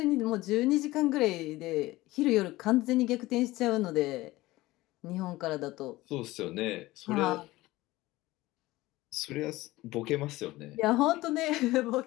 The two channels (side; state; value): right; quieter; 18.5 dB